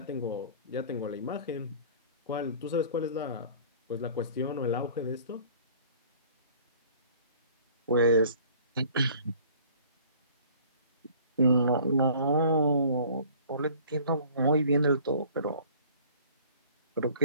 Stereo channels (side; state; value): both; inverted; correlation -0.50